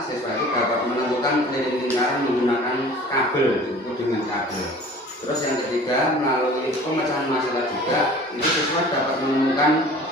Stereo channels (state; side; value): normal; both; correlation 0.45